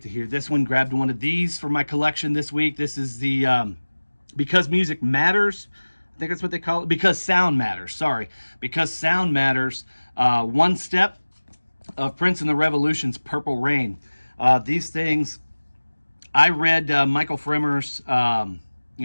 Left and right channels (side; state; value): both; inverted; correlation -1.00